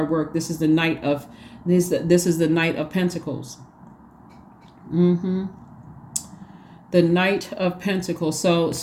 work. This is the Knight of Pentacles. The Knight of Pentacles. So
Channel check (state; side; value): identical; both; correlation 1.00